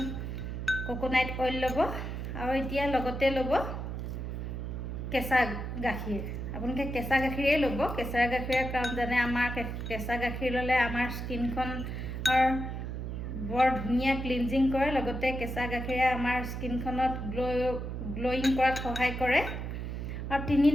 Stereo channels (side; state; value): right; noise; hum, 5 dB below the sound